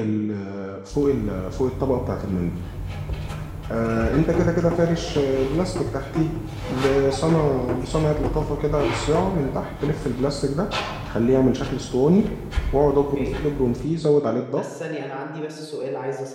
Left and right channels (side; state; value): both; identical; correlation 1.00